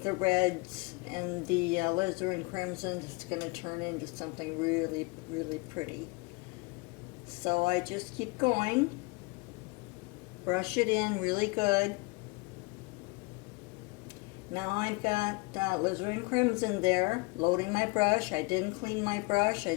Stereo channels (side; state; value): right; quieter; 27.4 dB